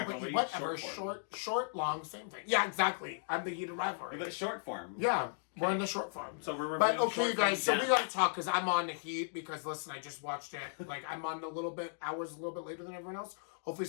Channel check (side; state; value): right; silent; digital silence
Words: but whatever. short Short, long, same thing. Yeah, exactly. I'm the heated rivalry. But short form. Yeah, we're in the short form. So we're But reviewing okay, short guys, form so we dance. got to talk because I'm on the heat because, listen, I just watched it. Like, I'm on hours a little bit later than everyone else. Hopefully